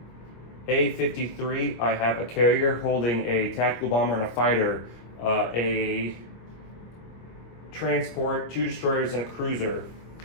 A-53, I have a carrier holding a tactical bomber and a fighter, a transport, 2 destroyers, and a cruiser.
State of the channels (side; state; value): right; late; 25 ms